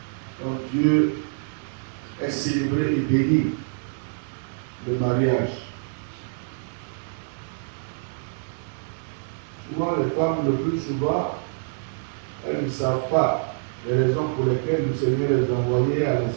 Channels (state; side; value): silent; left; digital silence